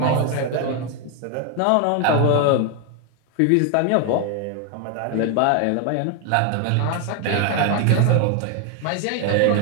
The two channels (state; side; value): different; both; correlation 0.01